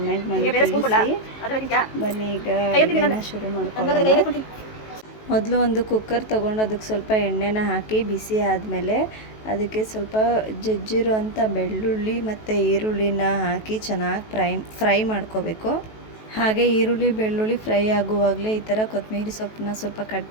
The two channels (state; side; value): late; right; 18 ms